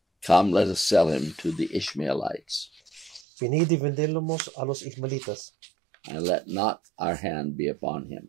Come, let us sell him to the Ishmaelites, Venid y vendemos a los ismaelitas, and let not our hand be upon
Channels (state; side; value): drops out; left; at 3.2 s